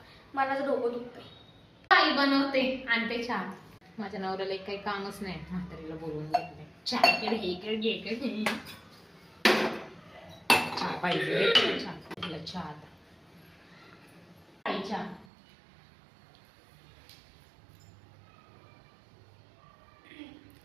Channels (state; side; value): drops out; left; at 15.2 s